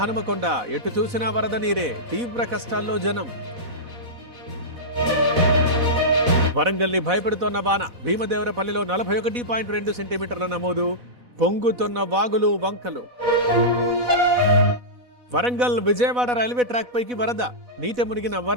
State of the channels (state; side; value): late; left; 4.1 ms